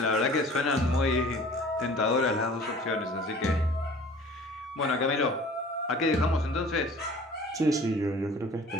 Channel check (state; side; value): normal; both; correlation 0.47